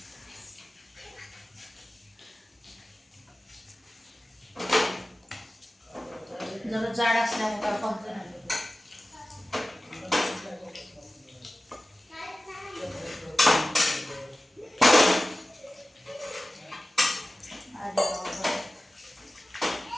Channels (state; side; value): normal; both; correlation 0.96